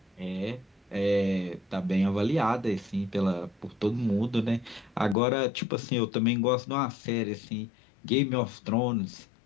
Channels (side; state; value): right; drops out; at 5.2 s